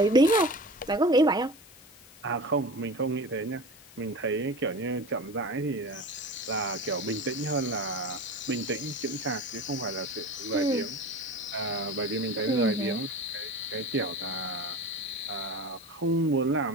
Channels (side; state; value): left; noise; hiss, 22 dB below the sound